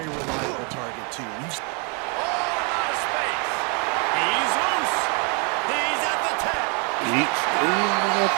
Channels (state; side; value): quieter; left; 35.3 dB